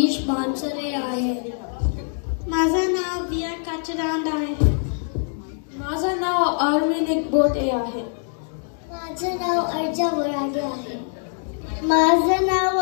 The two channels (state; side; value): silent; right; 63 dB below the other